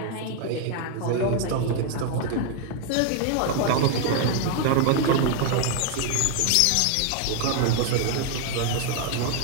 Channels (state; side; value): different; both; correlation 0.00